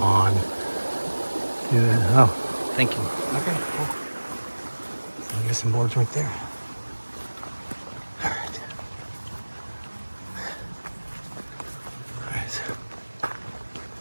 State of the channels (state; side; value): inverted; both; correlation -1.00